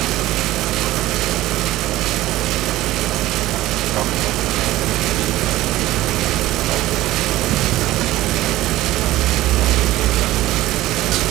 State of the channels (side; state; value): left; quieter; 16.3 dB